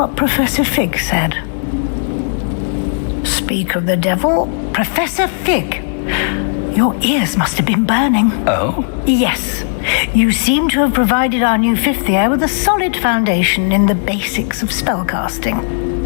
Professor Fig said. Speak of the devil, Professor Fig. Your ears must have been burning. Oh? Yes. You seem to have provided our new fifth year with a solid foundation in the basics of spellcasting.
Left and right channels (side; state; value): right; silent; digital silence